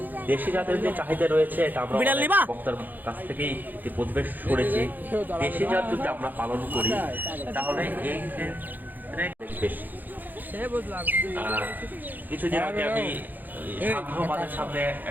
দেশি জাতের যে চাহিদা রয়েছে এটা আমরা বক্তার কাছ থেকেই প্রতিবেশ শুনেছি। দেশি জাত যদি আমরা পালন করি তাহলে এই ক্ষেত্রে বেশি। কিছুদিন আগে আমি সাধ্যবাদের সামনে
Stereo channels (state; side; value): late; left; 0.086 ms